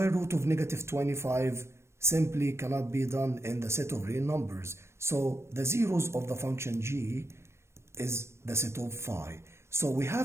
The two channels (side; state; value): left; late; 0.13 ms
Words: root of negative 25 simply cannot be done in the set of real numbers. So the zeros of the function g is the set of phi. So we